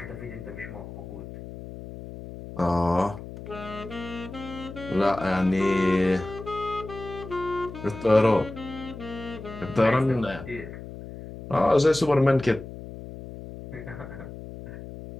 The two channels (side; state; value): left; noise; hum, 12 dB below the sound